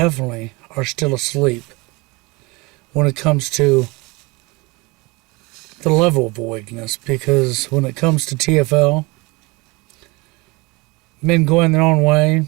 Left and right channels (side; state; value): left; quieter; 25.4 dB